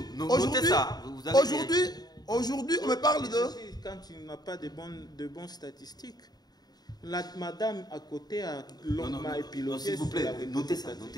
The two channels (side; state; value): right; late; 0.19 ms